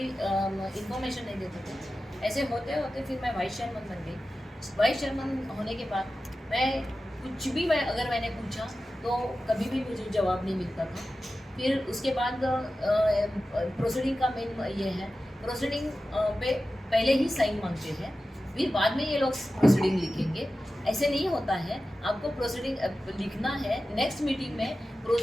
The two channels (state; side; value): normal; both; correlation 0.94